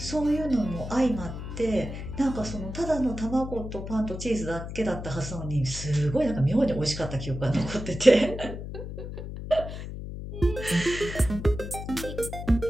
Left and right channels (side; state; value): left; noise; hum, 8 dB below the sound